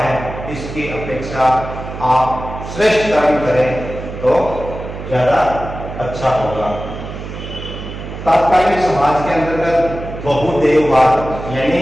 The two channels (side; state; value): right; noise; hum, 9 dB below the sound